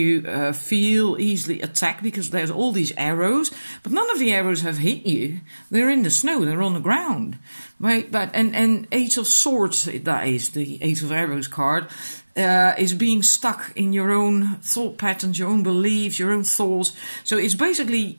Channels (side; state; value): both; inverted; correlation -1.00